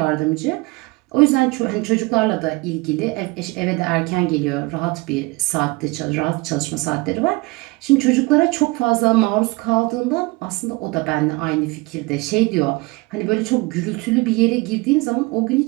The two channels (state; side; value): quieter; left; 24.6 dB